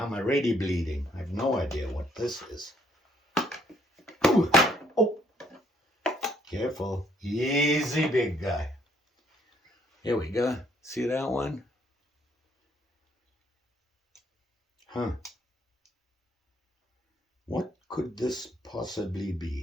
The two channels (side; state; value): both; normal; correlation 0.67